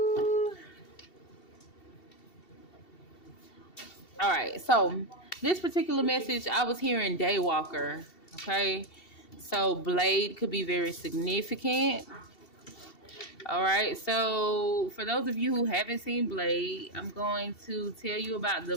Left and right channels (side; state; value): right; late; 2.7 ms